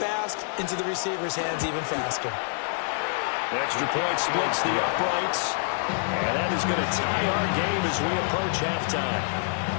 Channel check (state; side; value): silent; right; 60 dB below the other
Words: into the receiver's hands even faster. The extra point splits the uprights. And that is going to tie our game as we approach halftime.